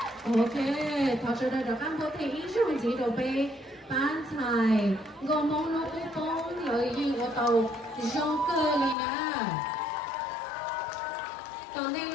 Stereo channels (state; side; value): drops out; right; at 9.0 s